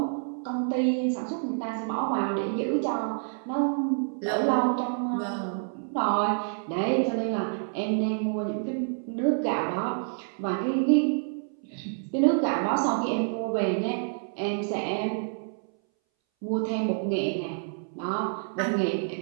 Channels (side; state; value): left; silent; 59 dB below the other